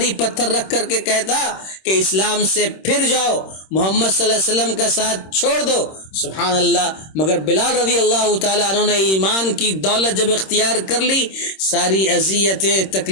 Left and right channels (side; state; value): right; late; 26 ms